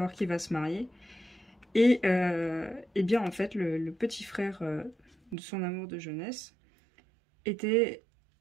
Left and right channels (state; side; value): drops out; left; at 5.4 s